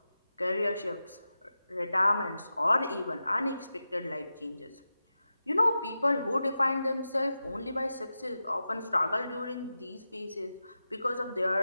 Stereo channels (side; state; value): both; inverted; correlation -0.92